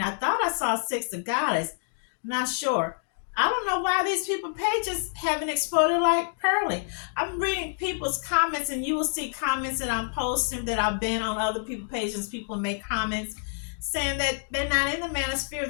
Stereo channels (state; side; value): silent; right; digital silence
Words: I thought I saw Six the Goddess. I'm not sure. I don't know why these people pages haven't exploded like Pearly. I'm reading people's comments, and you will see comments that I'm posting that I've been on other people's pages. People make comments saying that they're not in the manosphere.